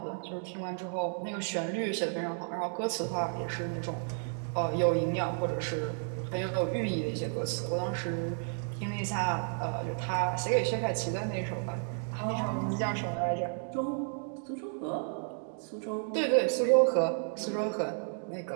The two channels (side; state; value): left; silent; 56 dB below the other